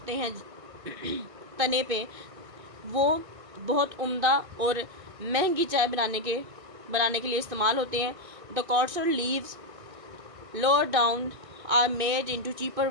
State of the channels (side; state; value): left; late; 1.6 ms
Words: हैं तने पे, वो बहुत उम्दा और महंगी चाय बनाने के लिए इस्तेमाल होते हैं. The coarser leaves lower down are made into cheaper